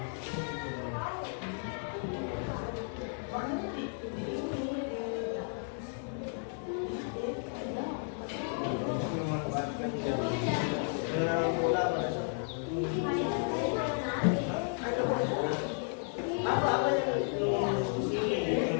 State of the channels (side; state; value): right; silent; 56 dB below the other